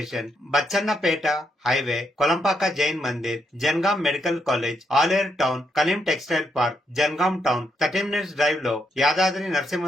Bachannapet highway, Kolampaka Jain Mandir, Jangaon medical college, Aleru town, Kaleem textile park, Jangaon town. 30 minutes drive లో యాదాద్రి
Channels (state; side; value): normal; both; correlation 0.79